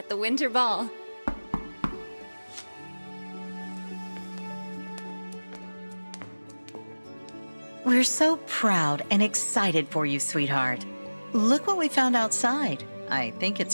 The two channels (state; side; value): inverted; both; correlation -1.00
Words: the Winter Ball. We're so proud and excited for you, sweetheart. Look what we found outside. I think